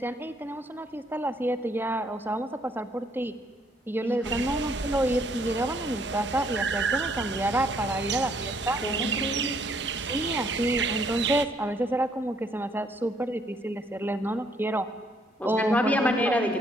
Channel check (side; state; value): both; normal; correlation 0.67